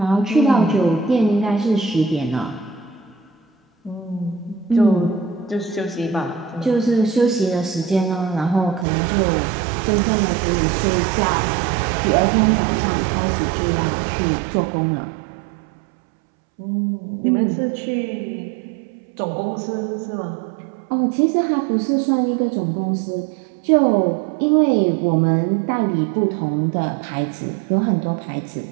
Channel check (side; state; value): left; drops out; at 8.8 s